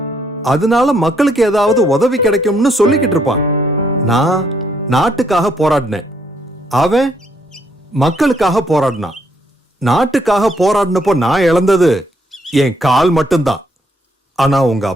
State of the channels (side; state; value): both; normal; correlation 0.71